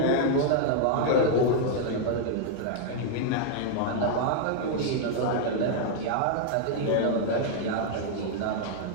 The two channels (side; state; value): both; different; correlation -0.01